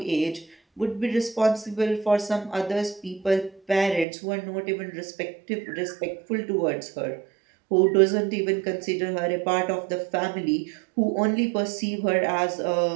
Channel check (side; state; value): left; drops out; at 4.0 s